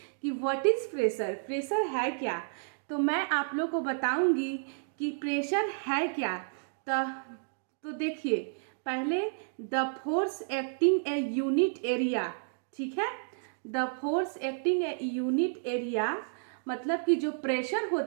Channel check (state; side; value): silent; left; digital silence